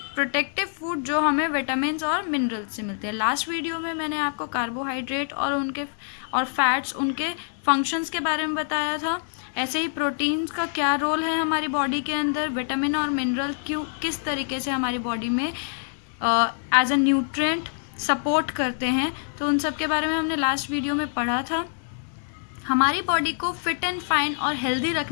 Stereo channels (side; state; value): right; silent; digital silence